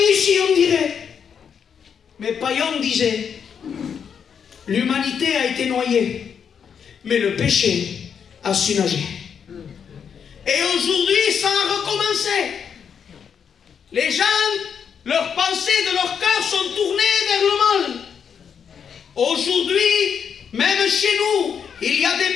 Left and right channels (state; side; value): quieter; right; 7.2 dB